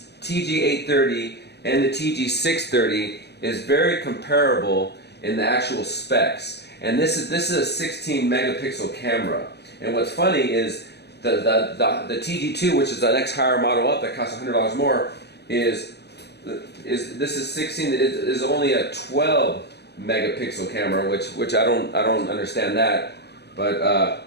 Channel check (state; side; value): late; right; 0.48 ms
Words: TG-830 and the TG-630 is very comparable in the actual specs. And this is a 16 megapixel camera. And what's funny is the TG-2, which is the next higher model up that costs $100 more, is only a 12 megapixel camera, which I don't understand that. But